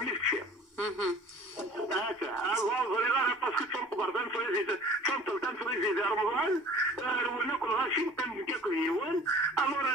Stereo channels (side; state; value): both; normal; correlation 0.46